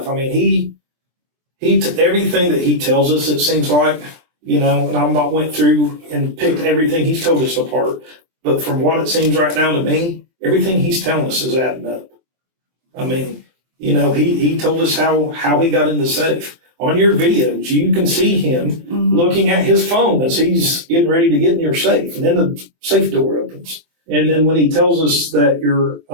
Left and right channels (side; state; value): left; late; 23 ms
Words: I mean, he everything that he tells us, it seems like, and I'm not went through and picked everything he's told us apart. But from what it seems right now to me, everything he's telling us is adding up. I mean, he told us how he got in the safe. On your videos, you can see him looking at his phone as he's getting ready to get in your safe. And then the safe door opens. And then when he tells us that your